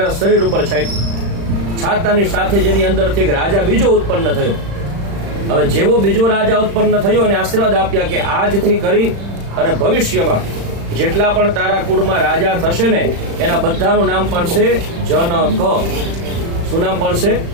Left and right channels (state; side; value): late; left; 35 ms